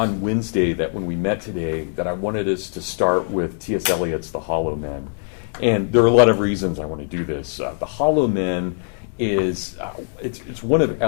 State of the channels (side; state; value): right; silent; 64 dB below the other